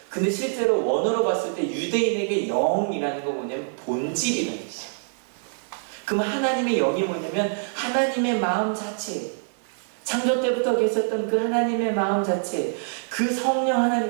근데 실제로 원어로 봤을 때 유대인에게 영이라는 거 뭐냐면 본질이라는 뜻이에요. 그럼 하나님의 영이 뭐냐면 하나님의 마음 자체, 창조 때부터 계셨던 그 하나님의 마음 자체, 그 성령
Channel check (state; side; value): silent; left; digital silence